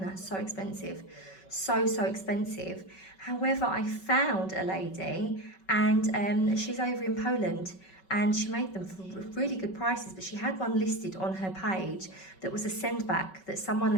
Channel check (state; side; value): late; right; 5.3 ms